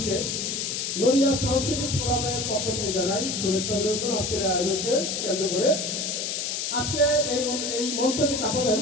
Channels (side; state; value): left; noise; hiss, 2 dB below the sound